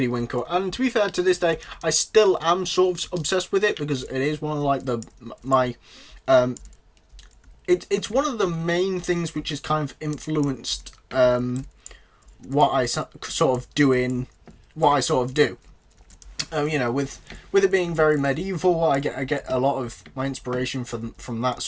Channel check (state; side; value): identical; both; correlation 1.00